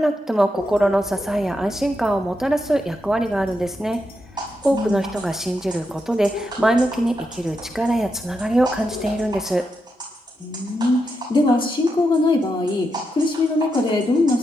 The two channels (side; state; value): both; normal; correlation 0.84